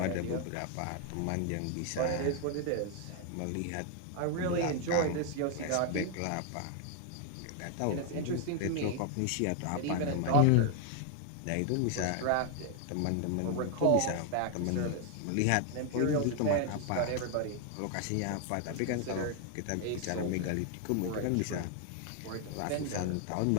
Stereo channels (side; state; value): both; different; correlation 0.01